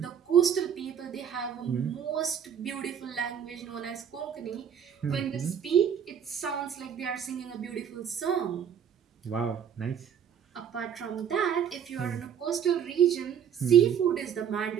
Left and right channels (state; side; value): quieter; left; 8.3 dB